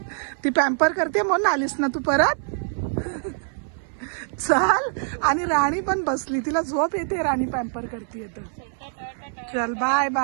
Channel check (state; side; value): silent; left; 61 dB below the other